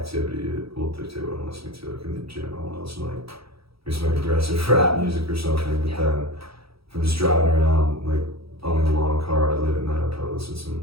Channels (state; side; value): late; left; 0.76 ms